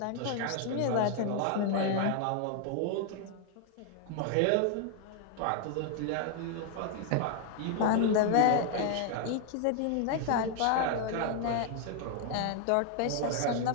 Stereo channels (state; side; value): different; both; correlation 0.00